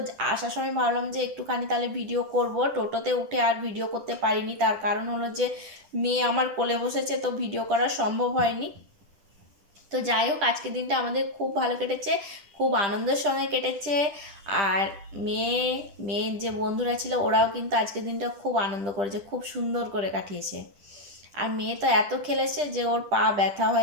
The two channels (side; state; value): left; late; 10 ms